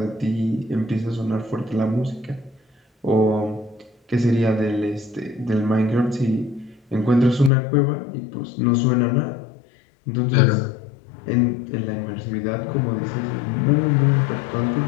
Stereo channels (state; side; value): drops out; right; at 7.5 s